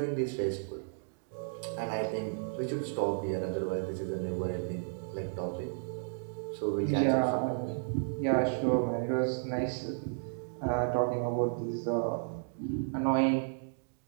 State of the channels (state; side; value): silent; left; digital silence